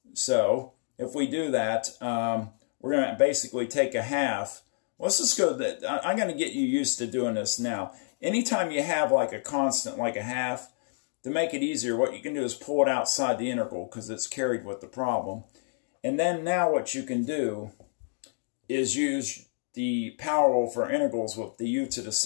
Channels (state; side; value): silent; right; digital silence